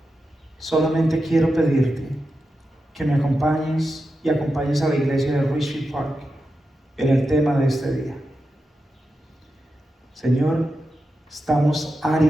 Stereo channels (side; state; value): both; normal; correlation 0.89